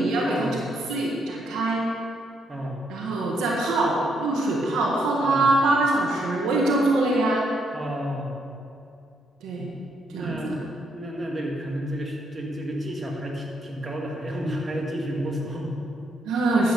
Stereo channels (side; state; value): both; normal; correlation 0.75